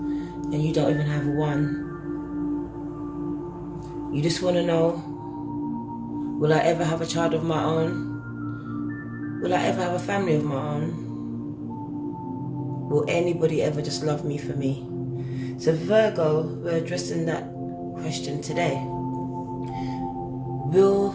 and you don't even have one. You just want to know, will I ever have a child of my own? Will I ever have a family of my own? Will anybody ever just love me for me? So Virgo, we're addressing that question today. Will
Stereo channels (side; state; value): both; identical; correlation 1.00